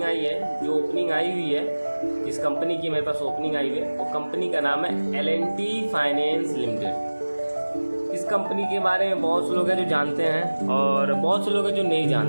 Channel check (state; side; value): inverted; both; correlation -1.00